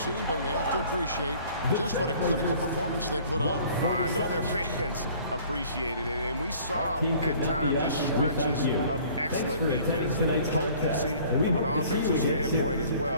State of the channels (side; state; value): both; inverted; correlation -0.53